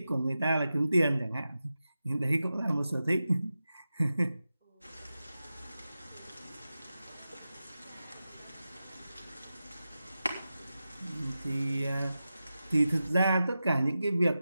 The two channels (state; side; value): inverted; both; correlation -0.92